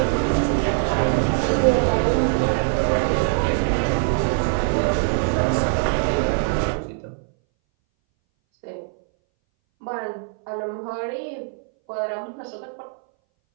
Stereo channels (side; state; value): left; silent; 61 dB below the other